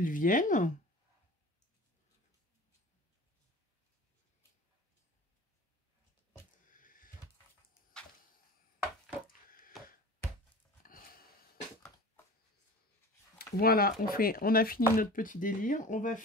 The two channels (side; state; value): both; normal; correlation 0.38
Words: viennent. Voilà, on a fini notre petit délire. On va